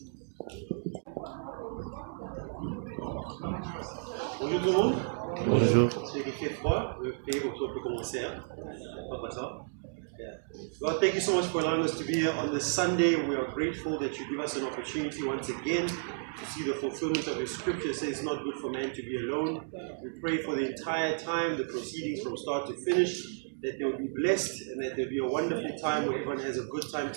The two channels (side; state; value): left; silent; digital silence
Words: Bonjour tout le monde. Bonjour. Ceux qui fait froid, le pays pour qu'on peut commencer. Pas ça. Lord, thank you so much for allowing us to be here on this Sunday. We are grateful that you give us an opportunity once again to see the fulfillment of your scripture. It says it's not good for man to be alone. We pray for the entire time, the proceedings from start to finish, that they will be blessed and that there will be a wonderful time where everyone has a good time